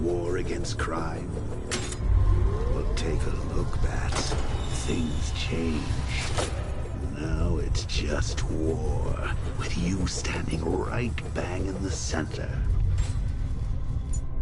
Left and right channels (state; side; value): identical; both; correlation 1.00